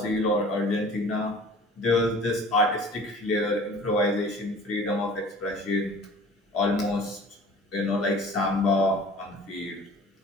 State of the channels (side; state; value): both; normal; correlation 0.47